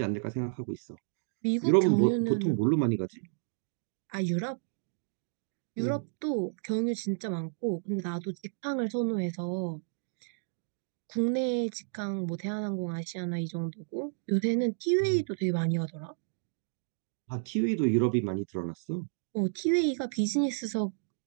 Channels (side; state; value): left; silent; digital silence